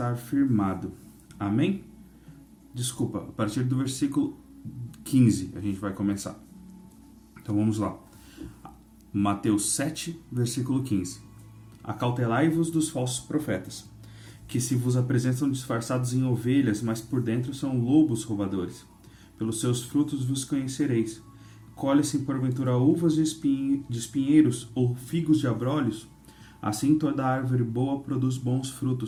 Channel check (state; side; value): identical; both; correlation 1.00